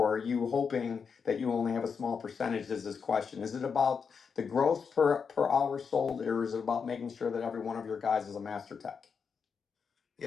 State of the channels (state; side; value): quieter; right; 6.0 dB